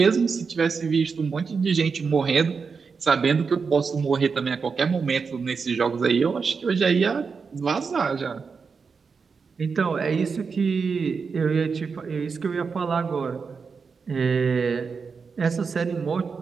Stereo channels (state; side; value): quieter; left; 5.3 dB